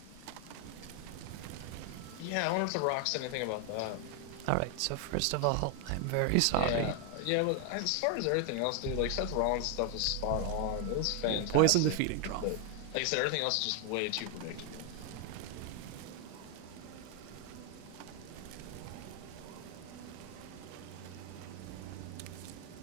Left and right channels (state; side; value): different; both; correlation 0.00